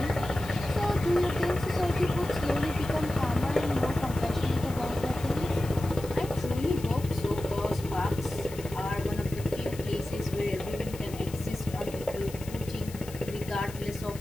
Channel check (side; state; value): left; noise; hiss, 17 dB below the sound